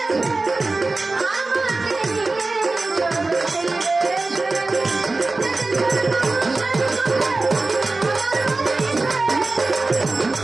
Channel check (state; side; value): quieter; left; 3.4 dB